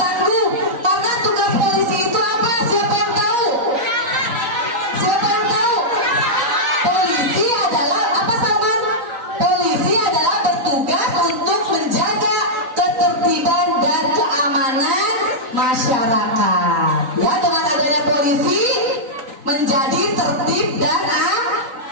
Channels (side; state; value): left; late; 3.9 ms